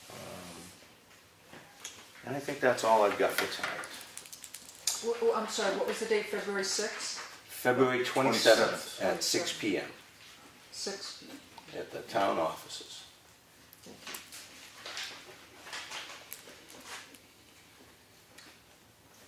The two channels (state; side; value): identical; both; correlation 1.00